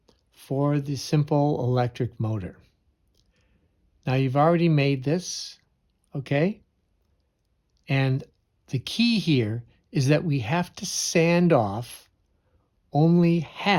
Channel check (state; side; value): identical; both; correlation 1.00